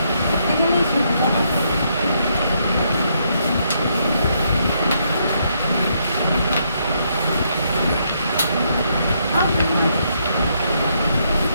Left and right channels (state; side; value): inverted; both; correlation -0.75